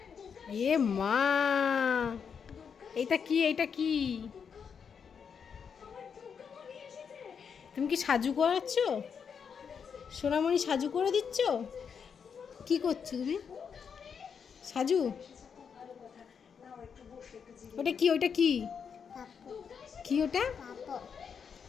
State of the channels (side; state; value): right; quieter; 6.7 dB